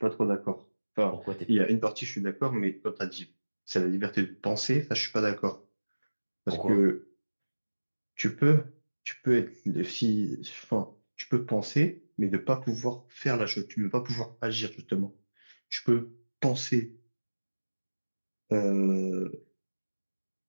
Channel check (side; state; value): both; inverted; correlation -1.00